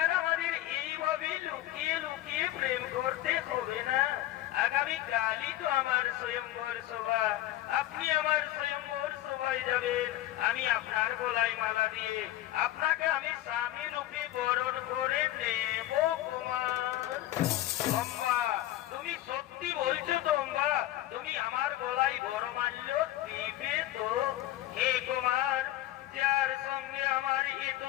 আমাদের এইভাবে লুকিয়ে লুকিয়ে প্রেম করতে হবে না। আগামী কালই তো আমার স্বয়ংবর সভা, আপনি আমার স্বয়ংবর সভায় যাবেন। আমি আপনার গলায় মালা দিয়ে আপনাকে আমি স্বামী রূপে বরণ করে নেব কুমার। অম্বা, তুমি সত্যি বলছো তো অম্বা? তুমি আমার গলায় বরমাল্য দিবে তো? হে কুমার, যার সঙ্গে আমার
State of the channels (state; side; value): quieter; right; 14.7 dB